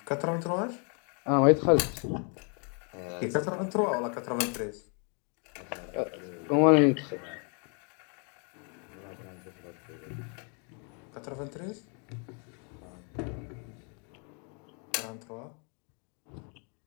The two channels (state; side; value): quieter; right; 38.6 dB